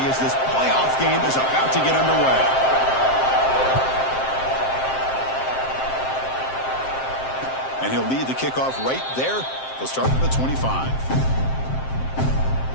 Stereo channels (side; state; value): right; late; 7.6 ms